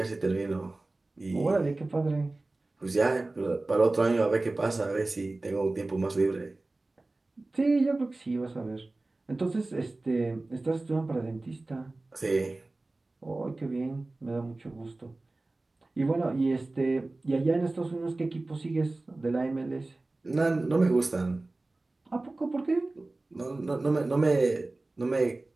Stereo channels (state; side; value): quieter; left; 3.1 dB